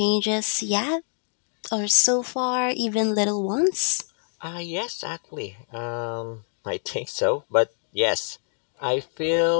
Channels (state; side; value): silent; right; digital silence